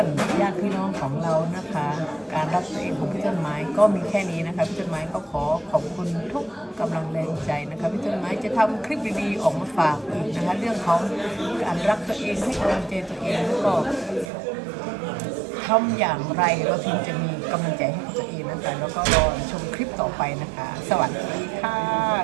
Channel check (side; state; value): left; drops out; at 14.3 s